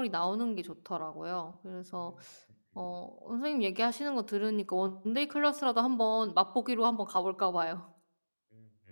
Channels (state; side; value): inverted; both; correlation -1.00